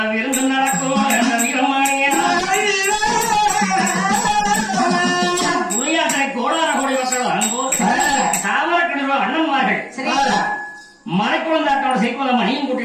விருந்து நடக்கும். அந்த வீரமானிய புளியாற்றை கோடார கோடி மக்கள் வரும்போது தாமரக்கிணறு அண்ணன்மார்கள் மலைக்குளந்தாட்டோட செய்வத மணியும்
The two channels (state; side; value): identical; both; correlation 1.00